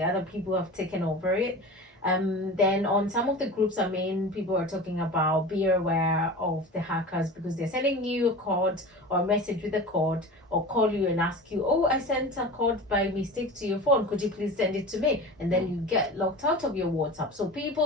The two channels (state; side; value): normal; both; correlation 0.33